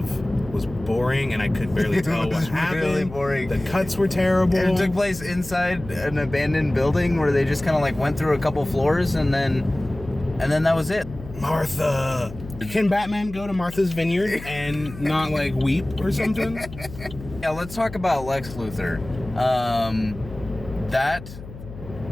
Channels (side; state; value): left; noise; hum, 14 dB below the sound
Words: was boring, and I could barely tell what happened. Really boring. The cuts were terrible. It took place inside an abandoned building where they just kind of like went through a couple floors and then that was it. Martha. Can Batman go to Martha's Vineyard and not like weep or something? Yeah, let's talk about Lex Luthor. That